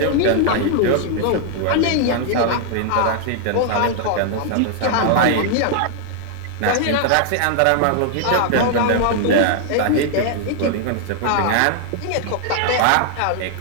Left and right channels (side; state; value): both; different; correlation 0.00